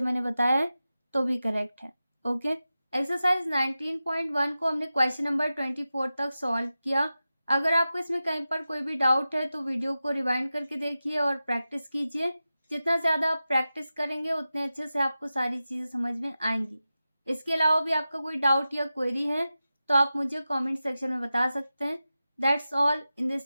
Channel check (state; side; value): inverted; both; correlation -0.94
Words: मैंने बताया है तो भी करेक्ट है। ओके, एक्सरसाइज 19.1 को हमने क्वेश्चन नंबर 24 तक सॉल्व किया। अगर आपको इसमें कहीं पर कोई भी डाउट है तो वीडियो को रिवाइंड करके देखिए और प्रैक्टिस कीजिए। जितना ज़्यादा आप प्रैक्टिस करेंगे उतने अच्छे से आपको सारी चीज़ें समझ में आएंगी। इसके अलावा भी आपका कोई डाउट या क्वेरी है तो आप मुझे कमेंट सेक्शन में बता सकते हैं। That's all in